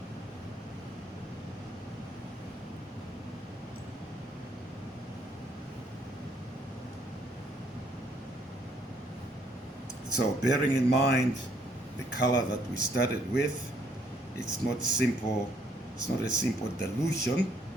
So bearing in mind the color that we started with, it's not simple, it's not a simple dilution.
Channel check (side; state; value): both; normal; correlation 0.67